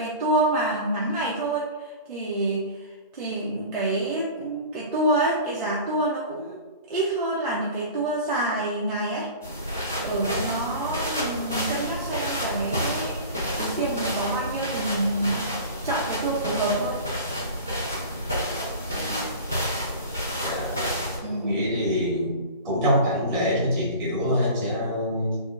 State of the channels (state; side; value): inverted; both; correlation -0.37